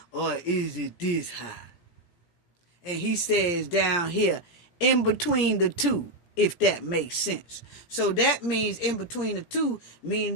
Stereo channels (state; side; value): late; right; 17 ms